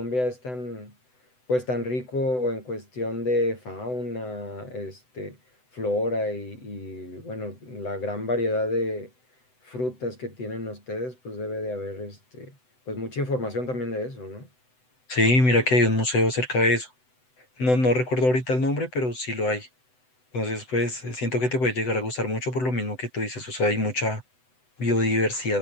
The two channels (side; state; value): right; late; 7.9 ms